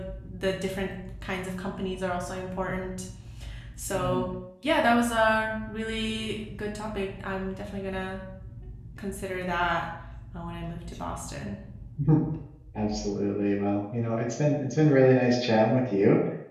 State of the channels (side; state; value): both; identical; correlation 1.00